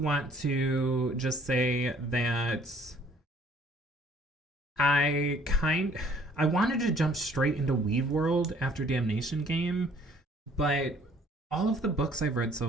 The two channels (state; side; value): normal; both; correlation 0.58